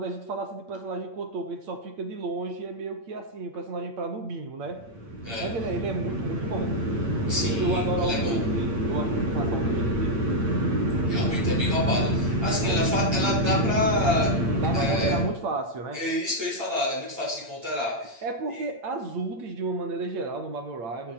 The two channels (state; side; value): late; left; 8.7 ms